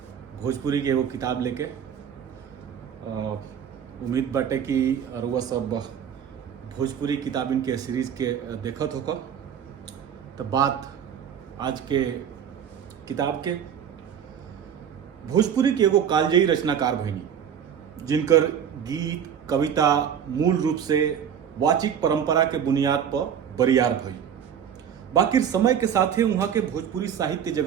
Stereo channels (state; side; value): quieter; left; 8.5 dB